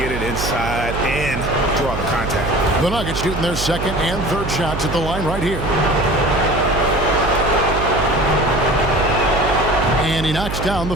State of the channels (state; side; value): noise; right; hum, 6 dB below the sound